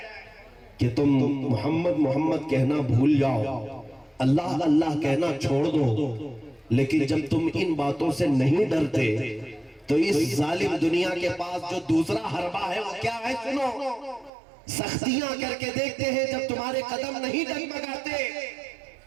کہ تم محمد محمد کہنا بھول جاؤ، اللہ اللہ کہنا چھوڑ دو۔ لیکن جب تم ان باتوں سے نہیں ڈرتے تو اس ظالم دنیا کے پاس جو دوسرا حربہ ہے وہ کیا ہے؟ سنو، سختیاں کر کے دیکھتے ہیں، جب تمہارے قدم نہیں ڈگمگاتے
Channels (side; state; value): left; drops out; at 14.3 s